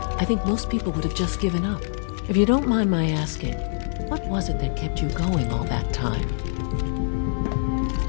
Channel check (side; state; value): right; silent; 62 dB below the other